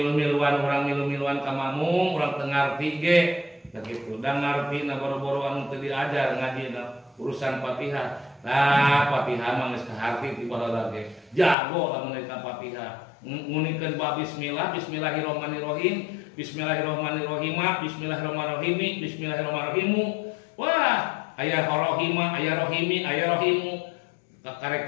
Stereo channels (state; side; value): drops out; right; at 11.6 s